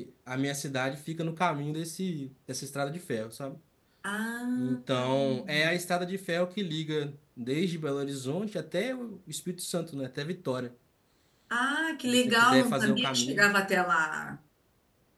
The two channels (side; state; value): both; identical; correlation 1.00